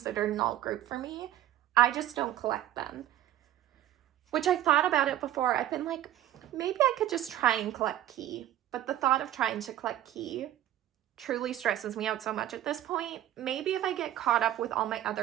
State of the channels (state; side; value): quieter; left; 12.8 dB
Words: an alt group for me. I just don't collect them. Which I thought about it before. I've been like, maybe I could just try and collect Key. But the thought of trying to collect Key truly stresses me out so much at this point. Maybe if I get caught up with all my